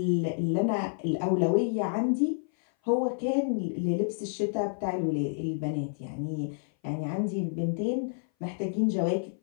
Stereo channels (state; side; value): silent; right; 57 dB below the other